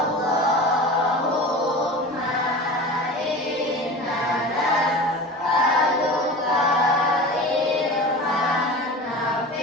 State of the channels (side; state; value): both; normal; correlation 0.33